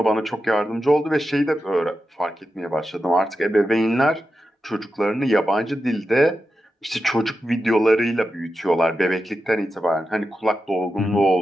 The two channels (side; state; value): both; normal; correlation 0.90